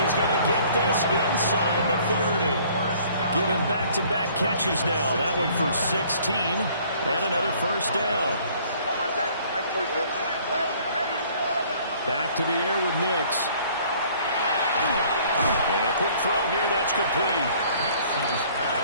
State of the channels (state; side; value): inverted; both; correlation -0.57